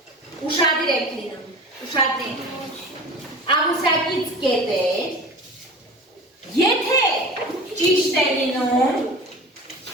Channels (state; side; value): normal; both; correlation 0.37